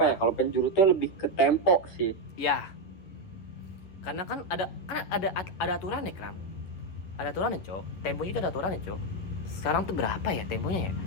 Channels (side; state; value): right; late; 11 ms